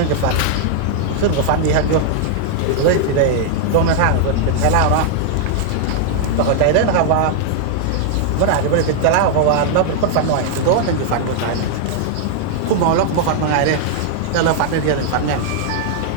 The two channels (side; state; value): both; different; correlation 0.00